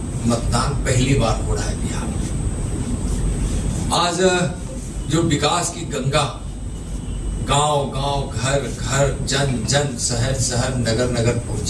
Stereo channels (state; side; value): identical; both; correlation 1.00